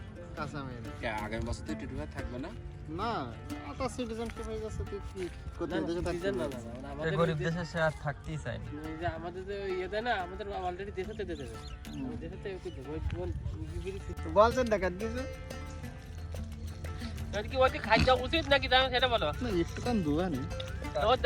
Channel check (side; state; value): both; identical; correlation 1.00